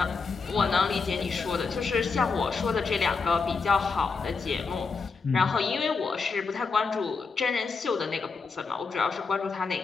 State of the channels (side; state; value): right; quieter; 4.7 dB